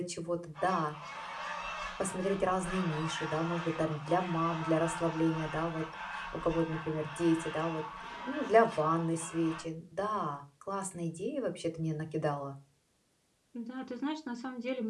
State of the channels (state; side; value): identical; both; correlation 1.00